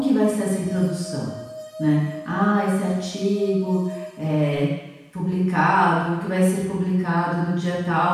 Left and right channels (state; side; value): identical; both; correlation 1.00